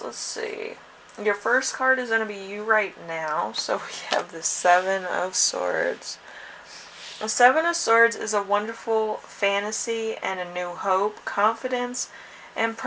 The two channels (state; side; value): identical; both; correlation 1.00